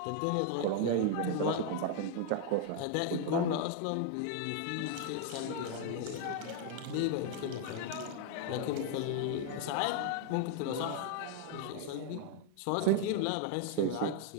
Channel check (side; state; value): both; different; correlation 0.00